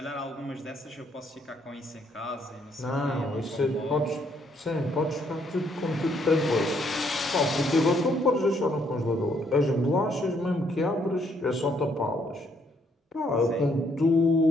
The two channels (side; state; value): both; normal; correlation 0.70